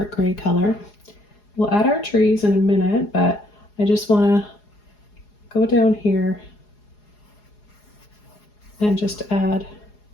gray color. We'll add our trees in a minute, but I just want to go down here and just add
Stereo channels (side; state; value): right; late; 4.8 ms